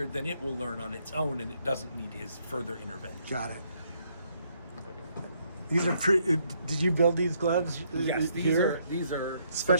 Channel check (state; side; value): inverted; both; correlation -0.71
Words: then it will learn on its own, and it doesn't need his further intervention. Got it. These are did you build these gloves? Yes, these are